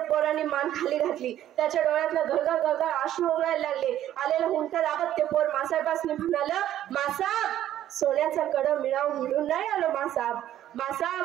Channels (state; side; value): quieter; left; 12.1 dB